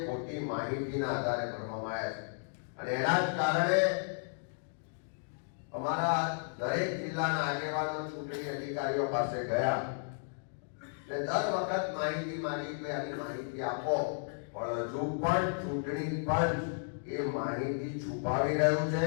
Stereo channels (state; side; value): silent; right; digital silence